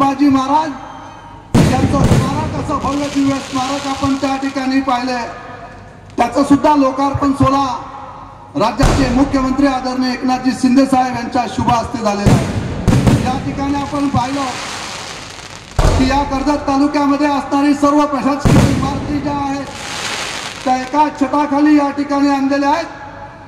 महाराज यांचं स्मारक, असं भव्य दिव्य स्मारक आपण त्या ठिकाणी पाहिले। त्याचं सुद्धा लोकार्पण सोहळा राज्याचे मुख्यमंत्री आदरणीय एकनाथजी शिंदे साहेब यांच्या शुभ हस्ते झालेला आहे। या ठिकाणी आपण पाहिलं की या कर्जत तालुक्यामध्ये असणारी सर्व प्रशासकीय इमारती ज्या आहेत त्या एका छताखाली या ठिकाणी आणलेल्या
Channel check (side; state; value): both; identical; correlation 1.00